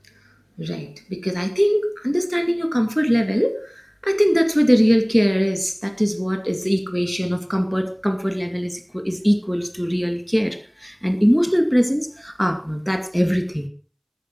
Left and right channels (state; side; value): identical; both; correlation 1.00